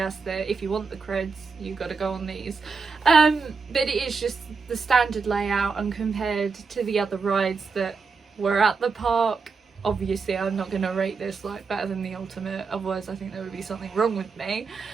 that if you want the creds you've got to go on these, but it is just the standard layout, and compared to the other rides that were at the park, obviously I'm not going to rate this like better than the Ultimate, otherwise I think there would be something wrong with me.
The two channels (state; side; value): quieter; left; 4.9 dB